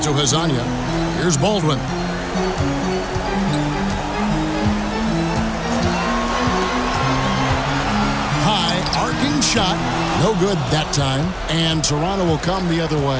to Hazanya. Here's Baldwin. High arcing shot. No good that time. And Toronto will come the other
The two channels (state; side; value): identical; both; correlation 1.00